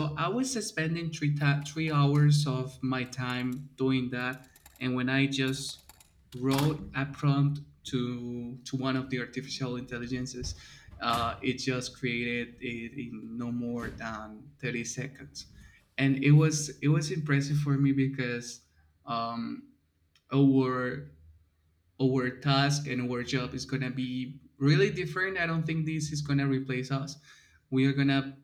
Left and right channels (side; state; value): both; identical; correlation 1.00